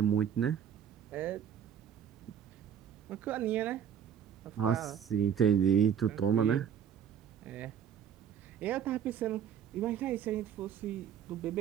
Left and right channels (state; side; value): quieter; left; 8.7 dB